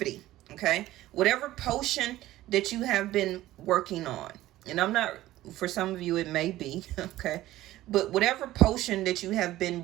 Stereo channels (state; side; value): quieter; left; 15.5 dB